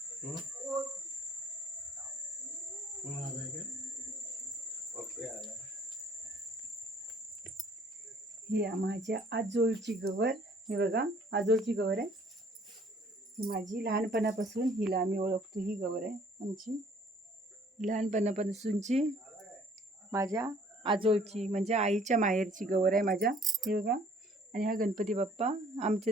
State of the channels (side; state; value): both; normal; correlation 0.57